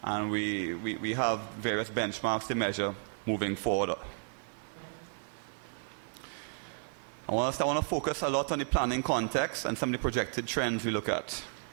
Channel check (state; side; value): silent; left; digital silence